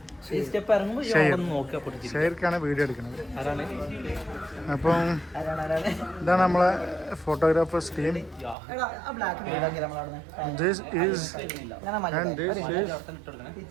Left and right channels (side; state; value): left; drops out; at 8.6 s